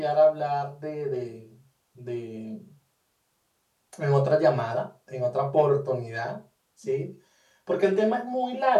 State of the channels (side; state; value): both; identical; correlation 1.00